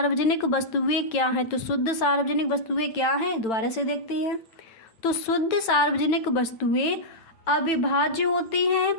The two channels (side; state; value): right; late; 9.1 ms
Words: वस्तुएं क्या हैं। तो शुद्ध सार्वजनिक वस्तुएं क्या हैं, दोबारा से देखते हैं। तो शुद्ध सार्वजनिक वस्तुएं अविभाज्य होती हैं,